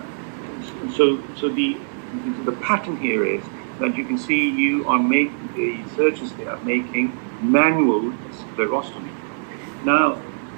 the pattern here is that you can see the surgeons, they are making manual sclerostomy. Now,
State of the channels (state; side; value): silent; left; 63 dB below the other